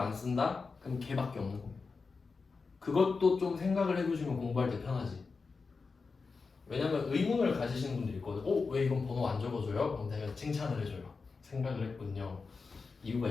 쓴다? 그럼 걔밖에 없는 겁니다. 그것도 좀 생각을 해두시면 공부할 때 편하지. 왜냐면 의문을 가지시는 분들이 있거든. 왜 이건 번호 안 적어줘요? 그럼 내가 칭찬을 해줘요. 생각을 했군요. 이유가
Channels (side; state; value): right; quieter; 4.6 dB